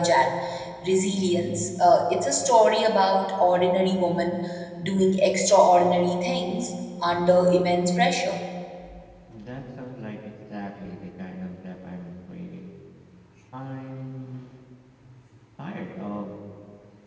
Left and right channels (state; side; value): identical; both; correlation 1.00